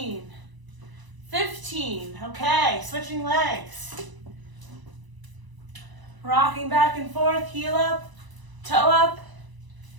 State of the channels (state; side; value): late; left; 1.0 ms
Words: 15. Okay, switching legs. Rocking back and forth, heel up, toe up.